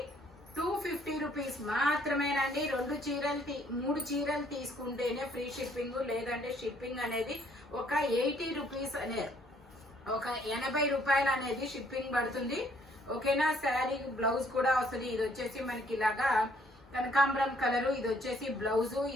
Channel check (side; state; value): both; normal; correlation 0.64